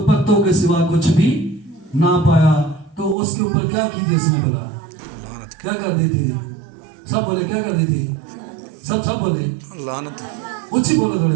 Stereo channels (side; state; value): left; drops out; at 3.2 s